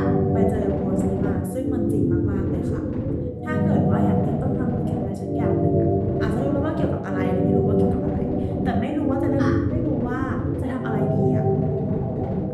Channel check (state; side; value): identical; both; correlation 1.00